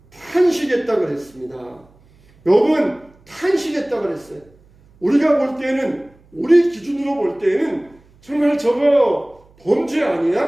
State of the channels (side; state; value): right; noise; hum, 30 dB below the sound